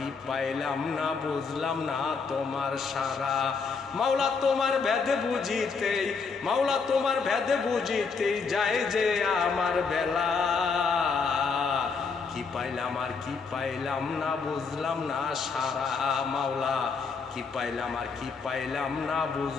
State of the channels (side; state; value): right; quieter; 5.1 dB